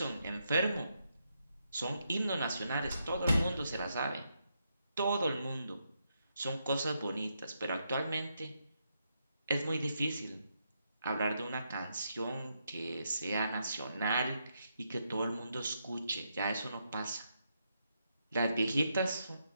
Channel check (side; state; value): both; inverted; correlation -0.81